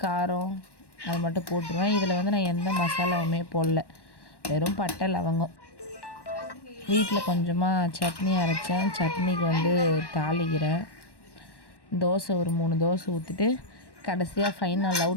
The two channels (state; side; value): late; right; 1.1 ms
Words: காரம் அது மட்டும் போட்டுருவேன். இதில் வந்து நான் எந்த மசாலாவுமே போடல, வெறும் பட்டை, லவங்கம். வீட்டில் கொஞ்சமாக சட்னி அரைச்சேன், சட்னிக்கு வந்து தாளிக்கிறேன். தோசை ஒரு 3 தோசை ஊற்றிட்டு கடைசியாக ஃபைனல்